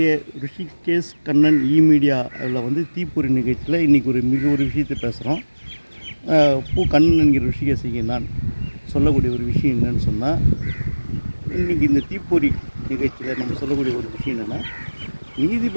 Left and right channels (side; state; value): both; inverted; correlation -1.00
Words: ரிஷிகேஷ் கண்ணன் மீடியா அதில் தீப்பொறி நிகழ்ச்சியில் இன்றைக்கி ஒரு விஷயத்தை பேசுகிறோம். கண்ணன் என்கிற ரிஷிகேஷிக்கு நான் சொல்லக்கூடிய ஒரு விஷயம் என்னன்னு சொன்னால், இன்றைக்கி இந்த தீப்பொறி நிகழ்ச்சியில் நம்ம சொல்லக்கூடிய ஒரு விஷயம் என்னென்னா,